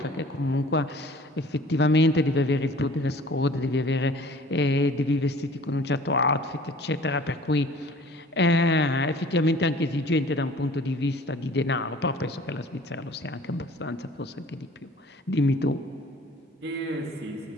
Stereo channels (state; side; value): normal; both; correlation 0.49